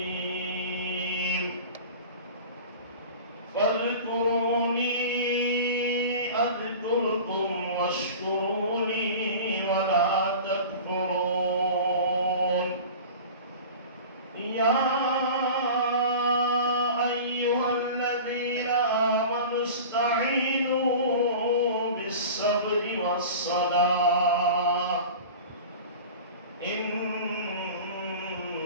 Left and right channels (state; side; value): inverted; both; correlation -0.37